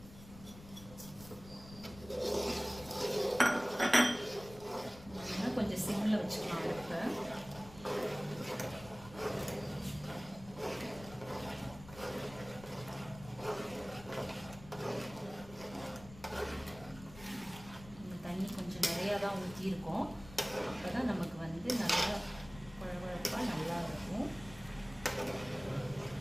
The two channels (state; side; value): noise; left; rumble, 17 dB below the sound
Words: கொஞ்சம் சிம்மில் வச்சுக்கலாம் அடுப்பை. தண்ணி கொஞ்சம் நிறையா தான் ஊற்றியிருக்கோம். அப்போ தான் நமக்கு வந்து நல்லா குழகுழப்பாக நல்லா இருக்கும்.